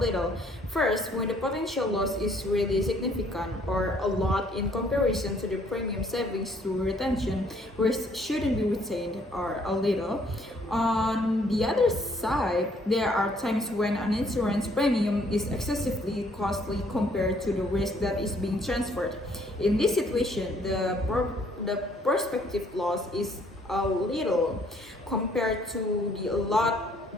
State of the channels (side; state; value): both; normal; correlation 0.64